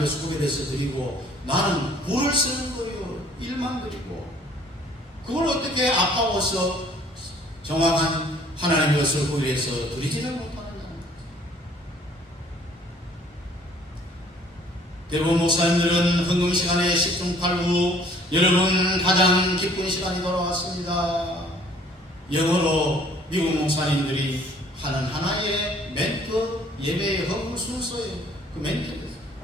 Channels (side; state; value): both; normal; correlation 0.57